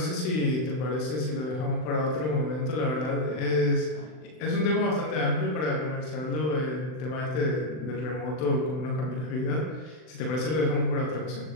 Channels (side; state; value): right; late; 39 ms